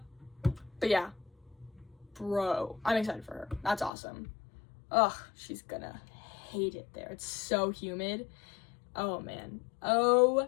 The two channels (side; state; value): right; drops out; at 3.9 s